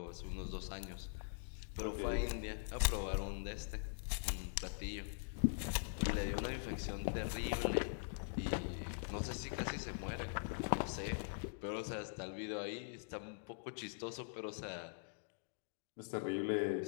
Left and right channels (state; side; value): silent; right; digital silence